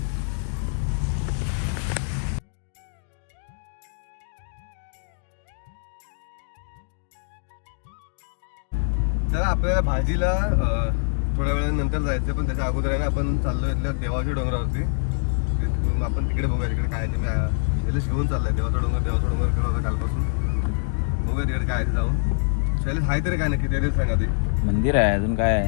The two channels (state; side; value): silent; right; digital silence